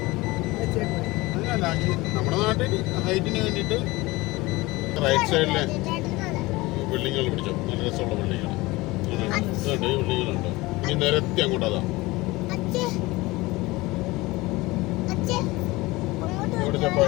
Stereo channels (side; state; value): right; quieter; 21.2 dB